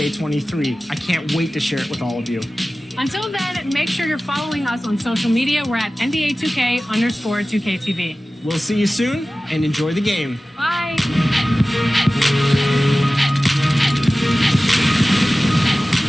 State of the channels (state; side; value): normal; both; correlation 0.96